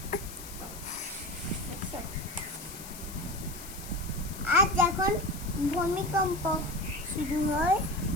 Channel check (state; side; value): noise; left; hiss, 13 dB below the sound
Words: আর যখন ভূমিকম্প শুরু হয়